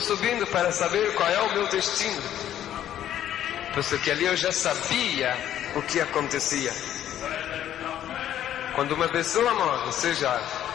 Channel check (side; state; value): right; quieter; 11.3 dB